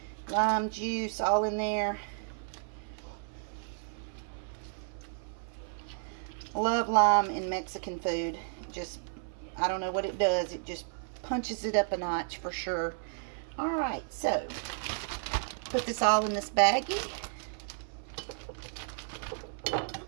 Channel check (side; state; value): left; silent; 56 dB below the other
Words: Lime juice all in there. Love lime in Mexican food. Just, I don't know what it does. It just punches it up a notch for sure. Alright, so put this all in this baggie.